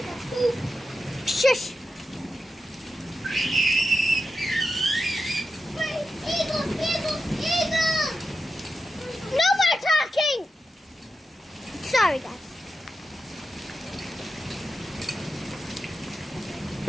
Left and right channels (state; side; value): normal; both; correlation 0.90